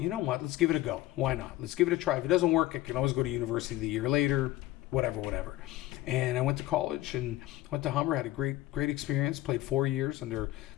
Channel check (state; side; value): quieter; right; 16.2 dB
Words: know what, let's give it a go. Why not? Let's give it a try. If it doesn't work, I can always go to university the year later, whatever. And I went to college and went to Humber, had a great experience, played 4 years under a